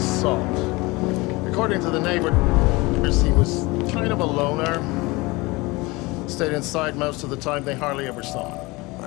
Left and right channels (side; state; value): right; quieter; 23.5 dB